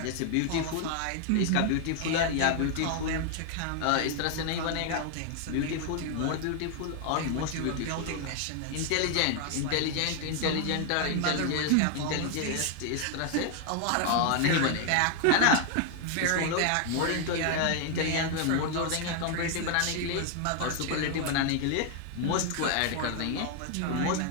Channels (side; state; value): both; different; correlation 0.00